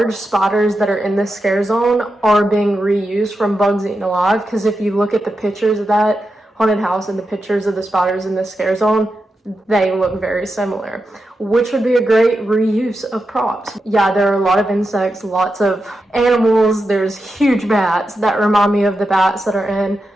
spiders that are in this scare zone are being reused from Bugs Eaten Alive, because if you look at the pictures of that haunted house and the pictures of the spiders in this scare zone, they look very similar, which would be a great reuse of props. Yeah, there are a lot of insects, lots of animals. There's huge bats that remind me of the bats that are in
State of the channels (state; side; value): normal; both; correlation 0.88